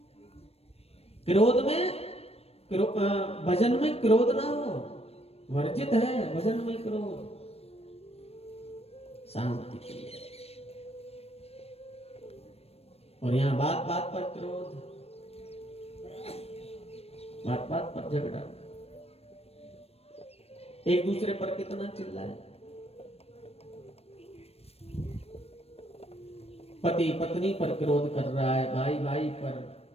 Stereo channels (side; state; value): right; late; 0.29 ms